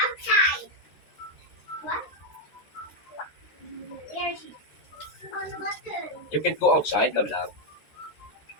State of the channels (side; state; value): right; late; 13 ms